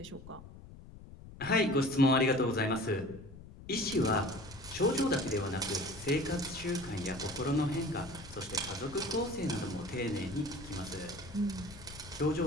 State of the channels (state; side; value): noise; left; rumble, 16 dB below the sound